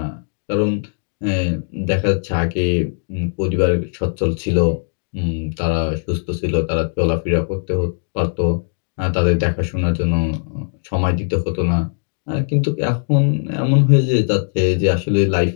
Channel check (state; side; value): silent; right; digital silence